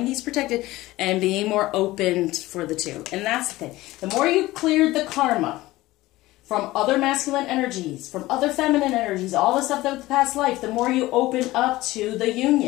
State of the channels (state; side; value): quieter; right; 18.0 dB